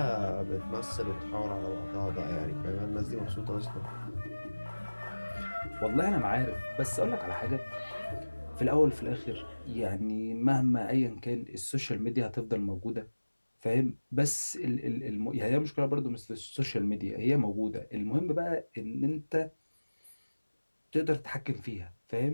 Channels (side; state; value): both; inverted; correlation -1.00